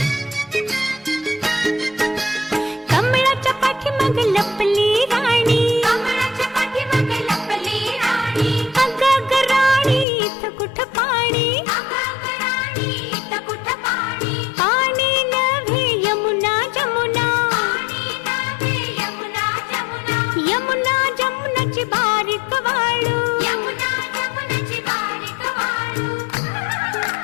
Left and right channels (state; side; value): drops out; right; at 10.1 s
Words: कमळाच्या पाठीमाग लपली राणी, कमळाच्या पाठीमाग लपली राणी, अगं ग राणी इथं कुठं पाणी, अगं राणी इथं कुठं पाणी, पाणी नव्हे यमुना जमुना, पाणी नव्हे यमुना जमुना, यमुना जमुनाची बारीक वाळू, यमुना जमुनाची बारीक वाळू.